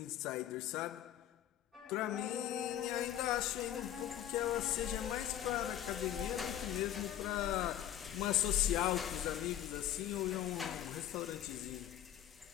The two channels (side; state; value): right; quieter; 11.5 dB